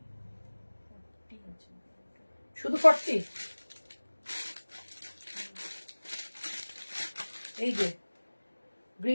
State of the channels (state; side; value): inverted; both; correlation -1.00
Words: শুধু 40? এই যে